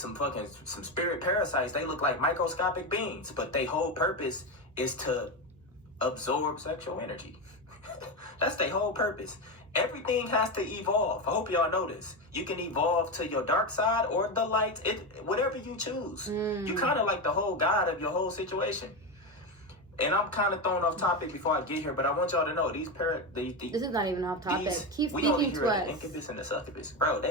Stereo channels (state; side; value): normal; both; correlation 0.15